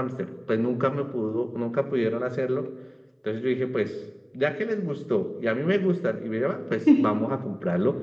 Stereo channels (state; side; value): identical; both; correlation 1.00